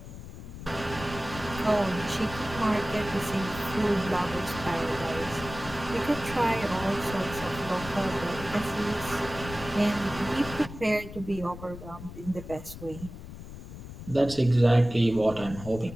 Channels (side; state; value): left; noise; rumble, 12 dB below the sound